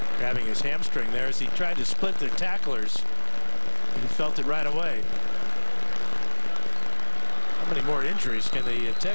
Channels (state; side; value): inverted; both; correlation -1.00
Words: Grabbing his hamstring there as he tried to split the tacklers. He felt it right away. How many more injuries can the